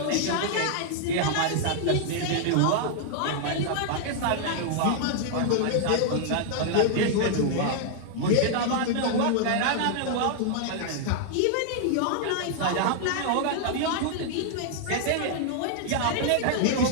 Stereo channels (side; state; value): both; different; correlation 0.00